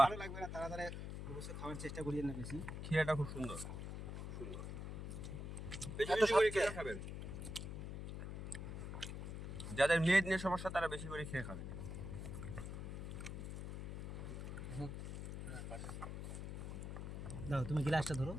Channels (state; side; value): noise; left; hum, 6 dB below the sound